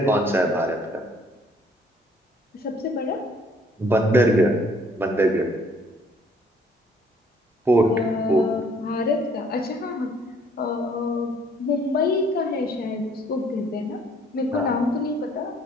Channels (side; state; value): both; normal; correlation 0.61